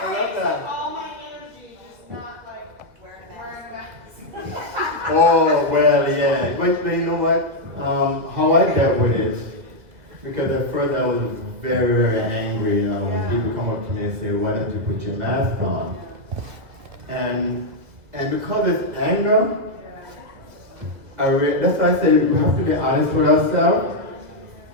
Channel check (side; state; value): left; late; 2.0 ms